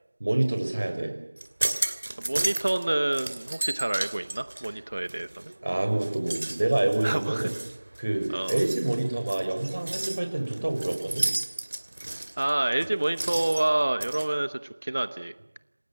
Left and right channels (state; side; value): inverted; both; correlation -1.00